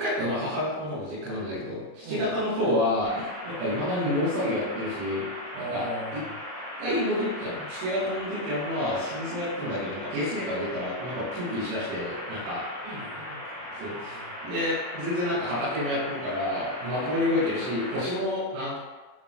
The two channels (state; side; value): late; left; 39 ms